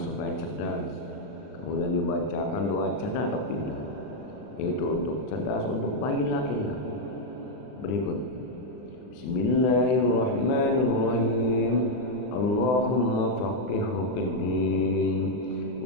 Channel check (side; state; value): right; late; 39 ms